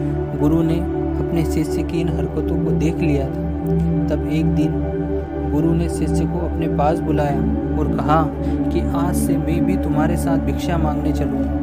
गुरु ने अपने शिष्य की इन हरकतों को देख लिया था। तब एक दिन गुरु ने शिष्य को अपने पास बुलाया और कहा कि आज से मैं भी तुम्हारे साथ भिक्षा मांगने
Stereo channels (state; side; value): identical; both; correlation 1.00